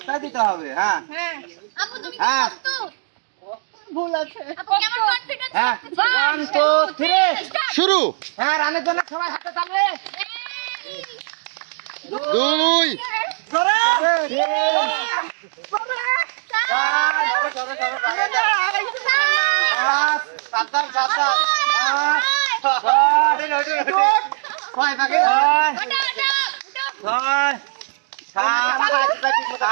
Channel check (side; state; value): left; silent; digital silence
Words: দিতে হবে। হ্যাঁ হ্যাঁ আপু তুমি কি হ্যাঁ। প্রস্তুত? ভুল আছে আপু, কেমন কনফিডেন্স হ্যাঁ লাগছে? 1 2 3 শুরু। হ্যাঁ রানীর জন্য সবাই হাতে তালি। 2 ধরে সাবধান সাবধান 7